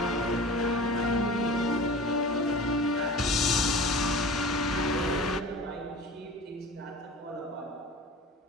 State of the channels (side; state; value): both; normal; correlation 0.37